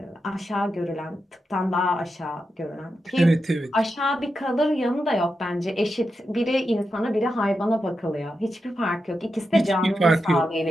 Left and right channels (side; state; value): both; normal; correlation 0.88